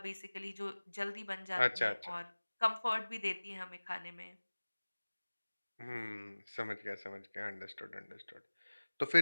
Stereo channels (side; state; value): both; inverted; correlation -1.00